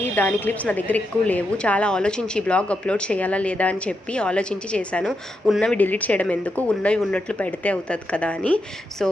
దాని క్లిప్స్ నా దగ్గర ఎక్కువ లేవు. చాలా ఆలోచించి బ్లాగ్ అప్లోడ్ చేయాలా లేదా అని చెప్పి ఆలోచించి చేశాను. ఉన్నవి డిలీట్ చేయడం ఎందుకు, ఉన్నవి ఉన్నట్లు పెడితే అవుతుంది కదా అని. సో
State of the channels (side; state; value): both; normal; correlation 0.84